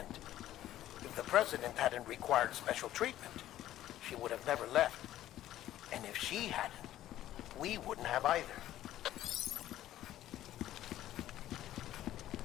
If the President hadn't required special treatment, she would have never left. And if she hadn't, we wouldn't have either.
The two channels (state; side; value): quieter; right; 13.3 dB